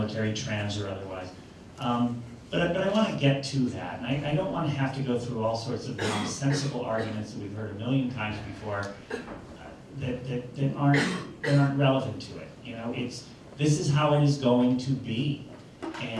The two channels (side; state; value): both; identical; correlation 1.00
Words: trans or otherwise. But I want to get to that, and I don't want to have to go through all sorts of nonsensical arguments that we've heard a million times before that aren't relevant to it. You know, this is how it is going to be,